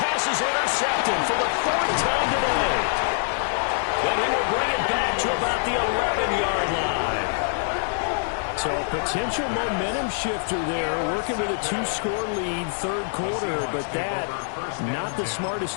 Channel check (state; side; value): silent; right; digital silence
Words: pass is intercepted for the 4th time today. And he will bring it back to about the 11-yard line. So a potential momentum shifter there, working with a 2-score lead, third quarter, but that, not the smartest